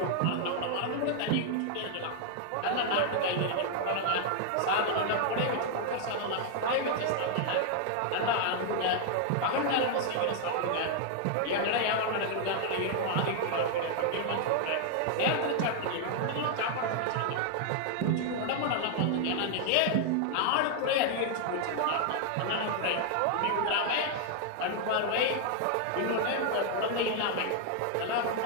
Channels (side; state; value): both; different; correlation 0.00